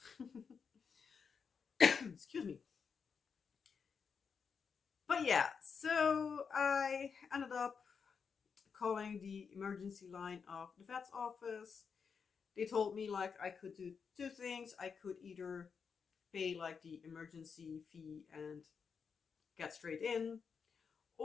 excuse me. But yeah, so I ended up calling the emergency line of the vet's office. They told me like I could do 2 things. I could either pay like the emergency fee and get straight in,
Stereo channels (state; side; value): quieter; right; 6.0 dB